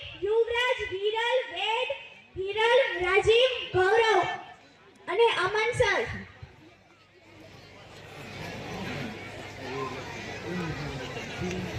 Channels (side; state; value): both; identical; correlation 1.00